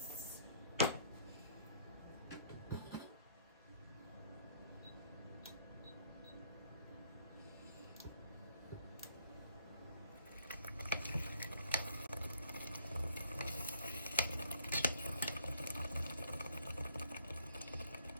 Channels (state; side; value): inverted; both; correlation -0.64